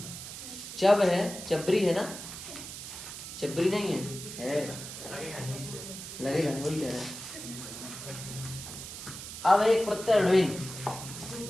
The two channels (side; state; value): right; noise; hiss, 10 dB below the sound